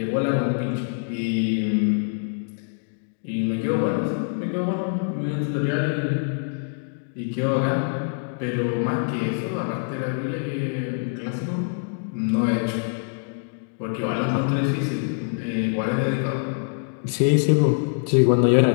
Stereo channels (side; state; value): right; silent; digital silence